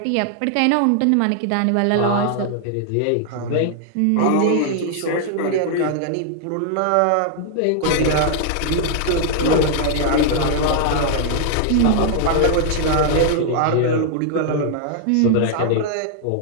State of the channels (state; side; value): different; both; correlation -0.01